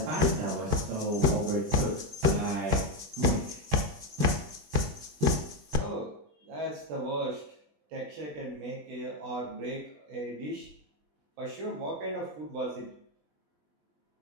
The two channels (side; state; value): left; late; 20 ms